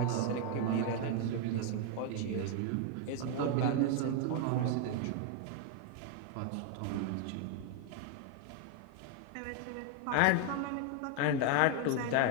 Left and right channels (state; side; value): different; both; correlation 0.01